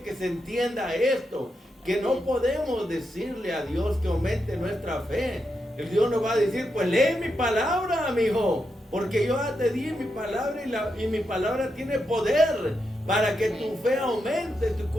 se entienda esto, que no podemos decirle a Dios que aumente nuestra fe. El Dios nos va a decir: pues lee mi palabra, amigo, porque yo ya te di mi palabra y mi palabra tiene poder para que tu fe aumente, tu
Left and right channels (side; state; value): both; normal; correlation 0.85